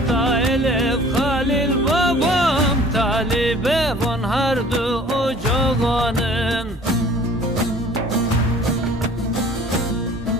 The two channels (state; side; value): normal; both; correlation 0.50